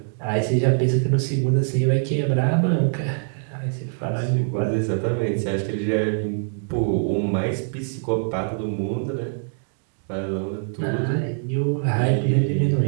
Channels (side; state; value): left; silent; 63 dB below the other